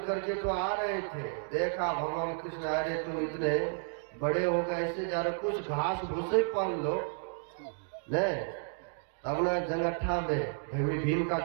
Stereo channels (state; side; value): silent; left; digital silence